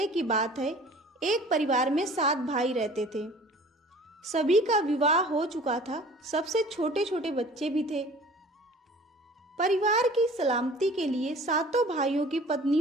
की बात है। एक परिवार में 7 भाई रहते थे। सभी का विवाह हो चुका था, सबसे छोटे छोटे बच्चे भी थे। परिवार की सलामती के लिए 7 भाइयों की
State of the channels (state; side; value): normal; both; correlation 0.47